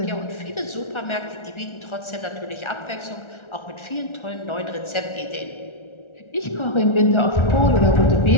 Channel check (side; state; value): right; late; 1.4 ms